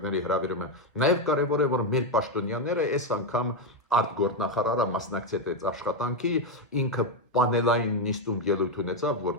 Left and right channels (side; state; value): both; normal; correlation 0.06